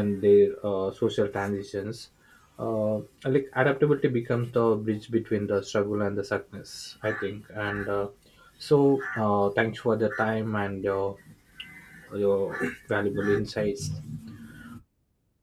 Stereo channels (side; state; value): both; identical; correlation 1.00